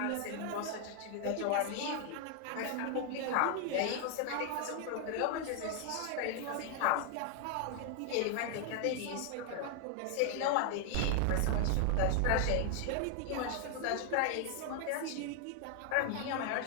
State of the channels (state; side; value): different; both; correlation 0.00